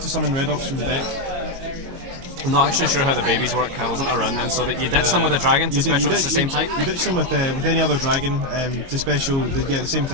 summon red ops from the deck. I'm not actually sure how the babies work. I wasn't around then. So that you ditch them with a dragon to special, it's the same type? You ditch them with any other dragon to special, the same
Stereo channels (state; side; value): late; left; 22 ms